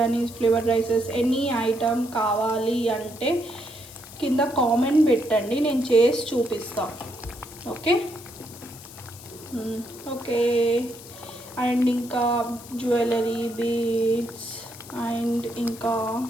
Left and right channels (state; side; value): noise; left; hiss, 17 dB below the sound